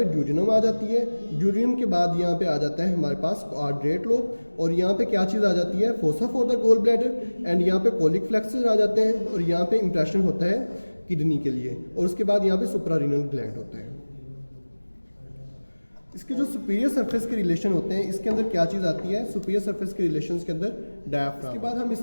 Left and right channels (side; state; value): both; inverted; correlation -1.00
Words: ड्यूडिनम आ जाती है। ड्यूडिनम के बाद यहाँ पे आ जाता है हमारे पास कॉर्डेट लोब, और यहाँ पे क्या चीज़ आ जाती है, fossa for the gall bladder, and यहाँ पे कोलिक फ्लेक्सस आ जाते हैं, और यहाँ पे इंप्रेशन होता है किडनी के लिए, और उसके बाद यहाँ पे सुप्रारीनल ग्लैंड होता है। इसके जो सुपीरियर सरफेस के रिलेशन होते हैं, इसके अंदर क्या चीज़ आती है, सुपीरियर सरफेस के रिलेशंस के अंदर डायफ्राम। इसके बाद हम